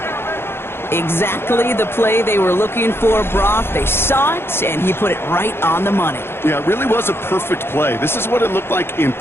Exactly the play they were looking for, Brock. They saw it, and he put it right on the money. Yeah, it really was a perfect play. This is what it looked like in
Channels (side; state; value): right; late; 0.11 ms